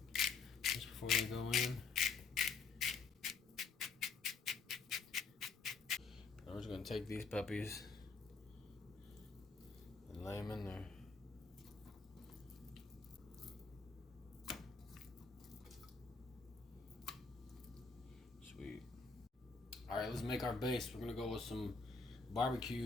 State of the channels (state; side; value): quieter; right; 4.7 dB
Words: just before they go in. I'm just gonna take these puppies and lay them in there. Sweet. All right, let's make our base. We're gonna go with some